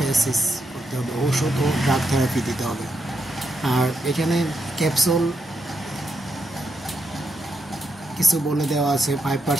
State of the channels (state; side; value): normal; both; correlation 0.81